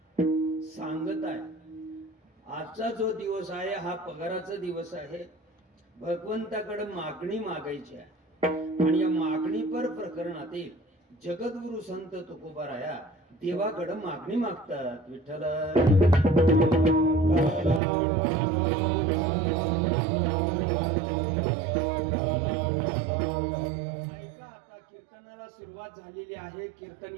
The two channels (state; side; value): drops out; left; at 17.8 s